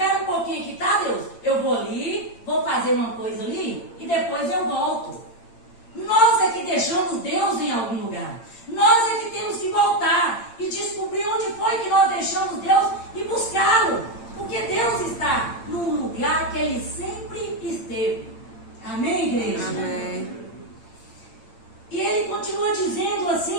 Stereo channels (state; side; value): late; right; 8.8 ms